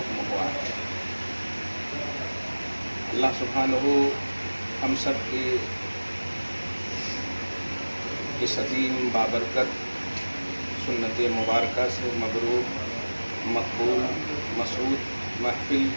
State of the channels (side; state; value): both; inverted; correlation -1.00